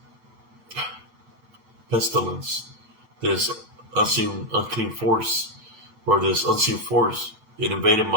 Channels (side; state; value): left; late; 9.1 ms